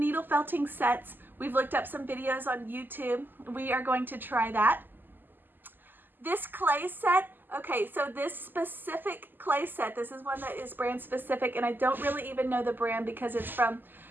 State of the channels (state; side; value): late; left; 0.091 ms